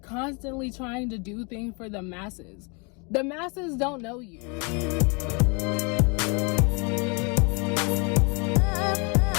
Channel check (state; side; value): quieter; right; 32.6 dB